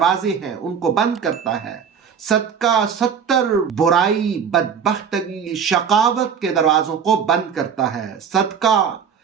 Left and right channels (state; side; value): quieter; left; 7.1 dB